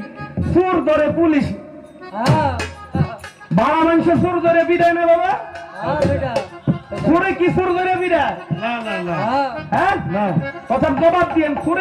চোর ধরে পুলিশ, বাড়া মানুষ চোর ধরে বিদায় না বাবা, চোরে কি চোর ধরে বিদায়? হ্যাঁ না, কথার জবাব দিয়েন,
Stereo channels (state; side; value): identical; both; correlation 1.00